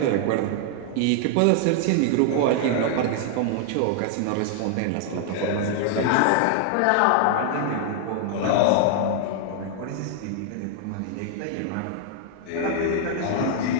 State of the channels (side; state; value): both; different; correlation 0.00